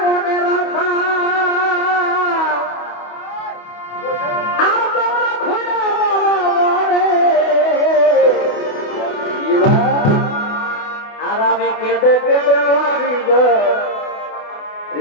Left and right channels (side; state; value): right; late; 28 ms